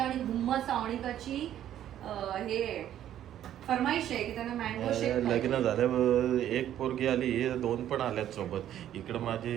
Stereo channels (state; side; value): quieter; left; 11.4 dB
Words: आणि हुम्मा सावणीकाची हे फरमाईश आहे की त्यांना मँगो शेक लग्न झालं एक पोरगी आली 2 पण आल्यात सोबत. इकडं